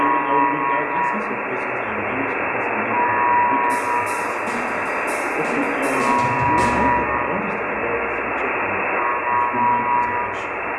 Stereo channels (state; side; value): identical; both; correlation 1.00